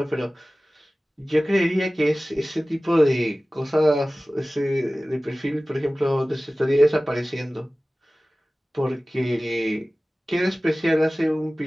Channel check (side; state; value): both; normal; correlation 0.97